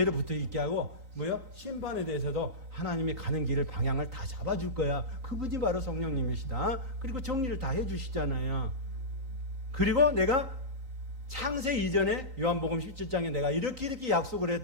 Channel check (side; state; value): left; late; 3.9 ms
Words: 붙어 있게 하고 뭐요? 심판에 대해서도 하나님이 가는 길을 방향을 다 잡아줄 거야. 그분이 바로 성령님이시다. 그리고 정리를 다 해주시잖아요. 그리고 내가 창세 이전에 요한복음 17장에 내가 이렇게 약속을